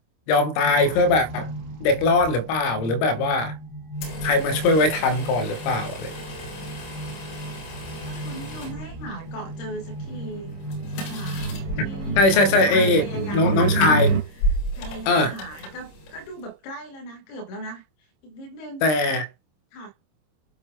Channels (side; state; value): right; late; 26 ms